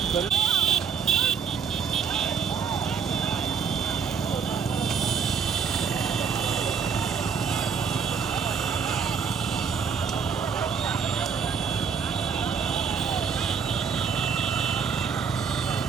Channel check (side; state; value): left; quieter; 6.2 dB